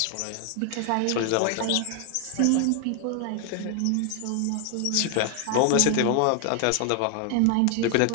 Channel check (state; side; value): different; both; correlation 0.00